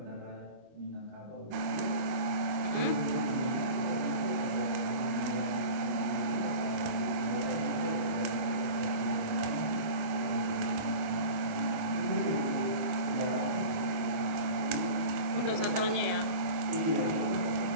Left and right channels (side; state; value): left; late; 25 ms